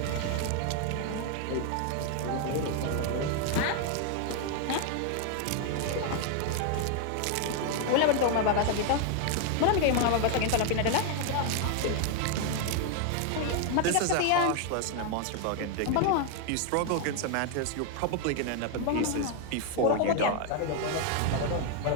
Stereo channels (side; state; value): both; different; correlation 0.00